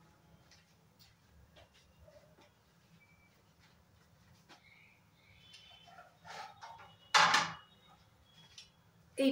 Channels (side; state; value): both; identical; correlation 1.00